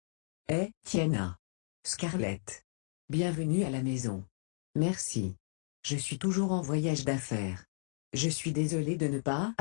Tiana. Scarlett. Bienvenue à la maison. Merci. Je suis toujours en voyage d'affaires. Je suis désolé de ne pas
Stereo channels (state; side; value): silent; right; digital silence